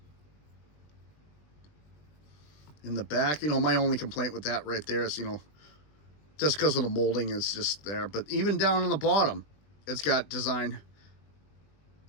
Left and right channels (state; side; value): late; right; 20 ms